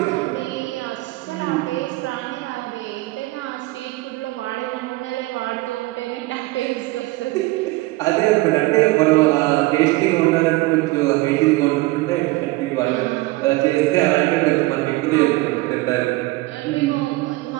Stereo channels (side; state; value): left; quieter; 20.9 dB